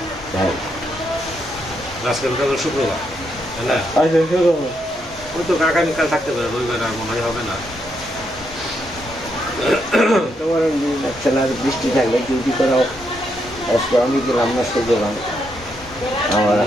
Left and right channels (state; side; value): normal; both; correlation 0.79